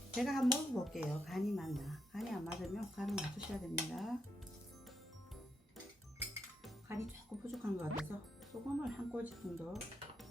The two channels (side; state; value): both; normal; correlation 0.81